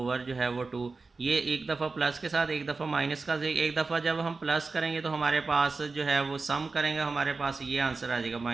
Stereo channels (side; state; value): left; quieter; 4.0 dB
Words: जो है वो 2। ये एक दफ़ा प्लस के साथ, एक दफ़ा माइनस का, एक दफ़ा जब हम प्लस करेंगे तो हमारे पास जो है वो सम करेंगे, हमारे पास ये आंसर आ जाएगा